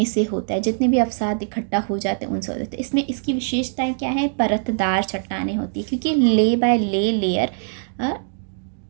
से होता है। जितने भी अवसाद इकट्ठा हो जाते हैं उनसे होते हैं। इसमें इसकी विशेषताएं क्या है? परतदार चट्टानें होती है, क्योंकि ले बाय लेयर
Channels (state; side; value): silent; left; digital silence